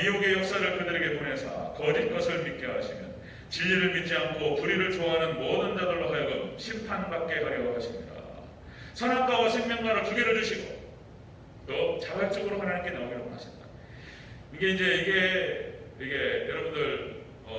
미혹의 역사를 그들에게 보내사 거짓 것을 믿게 하시면 진리를 믿지 않고 불의를 좋아하는 모든 자들로 하여금 심판받게 하려 하십니다. 선악과와 생명과를 두 개를 주시고 또 자발적으로 하나님께 나오기를 원하신다. 이게 여러분들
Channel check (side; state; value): both; identical; correlation 1.00